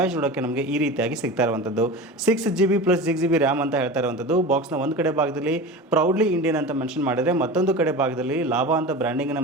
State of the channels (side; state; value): both; normal; correlation 0.31